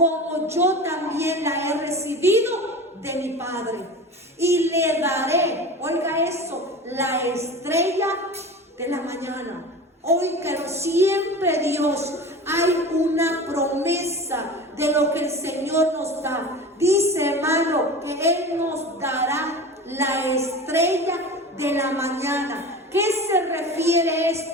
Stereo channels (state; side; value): normal; both; correlation 0.33